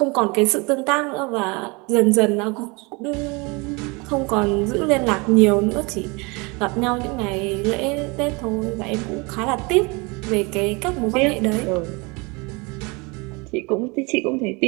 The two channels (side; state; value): left; quieter; 28.0 dB